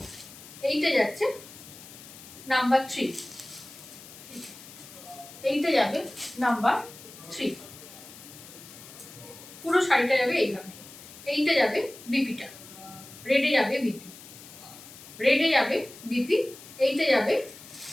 এইটা যাচ্ছে নাম্বার 3, এইটা যাবে নাম্বার 3। পুরো শাড়িটা যাবে এইভাবে। এইটা যাবে বিপিটা, রেডে যাবে বিপি। এইটা যাবে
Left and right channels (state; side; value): noise; left; hiss, 17 dB below the sound